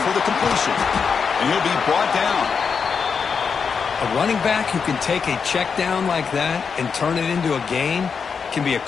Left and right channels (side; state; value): right; quieter; 6.0 dB